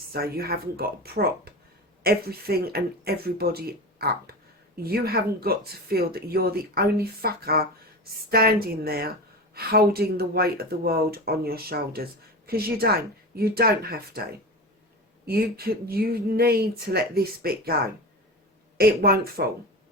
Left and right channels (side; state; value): both; normal; correlation 0.27